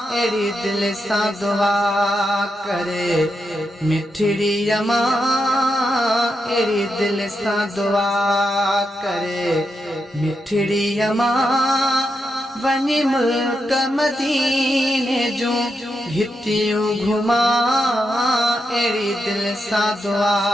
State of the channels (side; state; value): both; normal; correlation 0.84